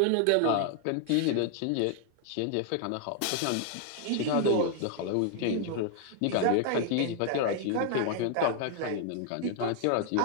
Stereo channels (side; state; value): both; different; correlation 0.00